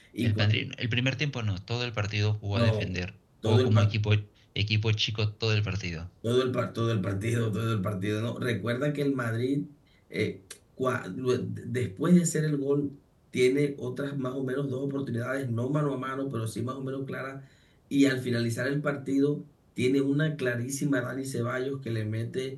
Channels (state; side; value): identical; both; correlation 1.00